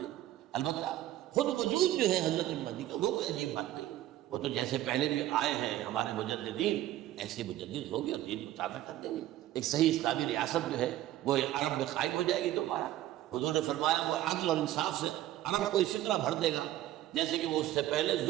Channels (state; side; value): quieter; left; 14.1 dB